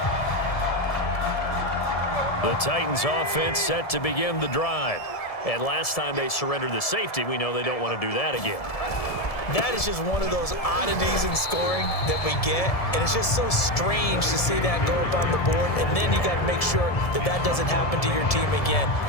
The Titans offense set to begin the drive. And last time they surrendered the safety, we know they don't want to do that again. That is just one of those oddities in scoring that we get, and it's just so strange to see that go up on the board, and then you got to make sure that that doesn't happen to your team again.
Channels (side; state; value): right; late; 1.7 ms